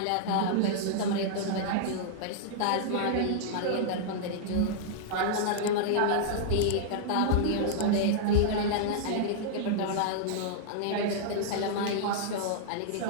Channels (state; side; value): different; both; correlation -0.01